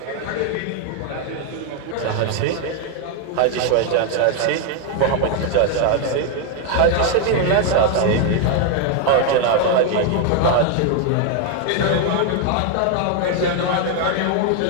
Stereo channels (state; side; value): different; both; correlation 0.01